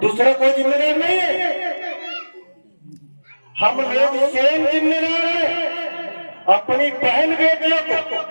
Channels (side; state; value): both; inverted; correlation -1.00